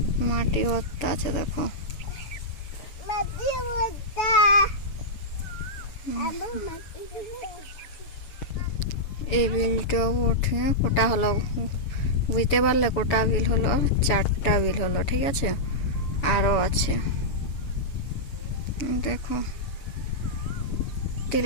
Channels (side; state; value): right; late; 7.1 ms